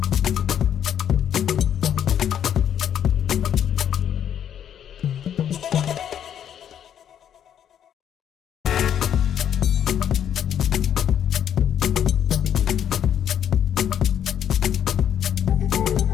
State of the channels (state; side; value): quieter; right; 9.5 dB